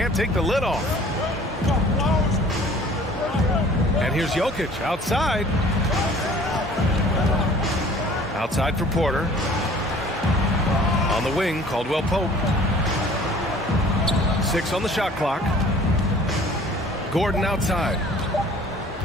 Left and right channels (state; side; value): normal; both; correlation 0.50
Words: take the lid off. And here's Jokic outside. Outside for Porter. On the wing, Caldwell-Pope. 6 on the shot clock. Gordon outside.